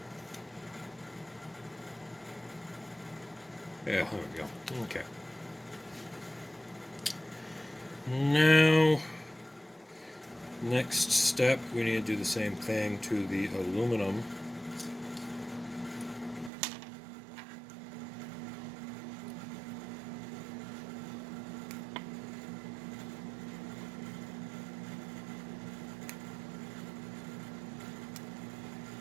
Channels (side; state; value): left; drops out; at 16.5 s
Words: Yeah, there we go. Okay. Now, next step, we need to do the same thing to the aluminum.